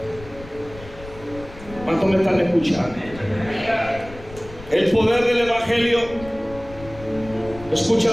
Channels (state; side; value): noise; left; rumble, 16 dB below the sound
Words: ¿Cuántos me están escuchando? El poder del Evangelio, escucha